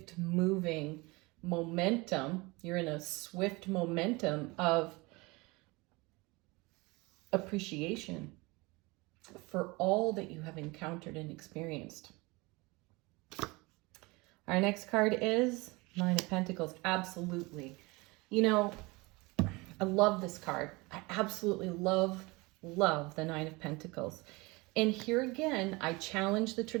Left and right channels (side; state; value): left; quieter; 24.5 dB